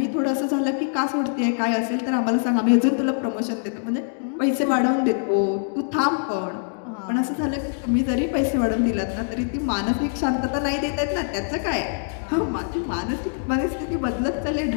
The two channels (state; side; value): silent; right; digital silence